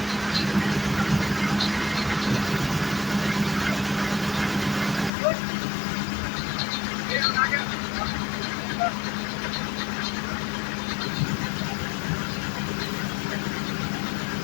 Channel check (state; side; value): drops out; right; at 5.1 s